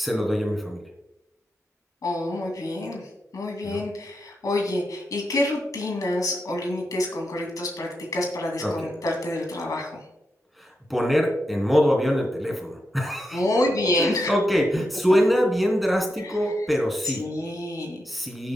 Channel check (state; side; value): normal; both; correlation 0.86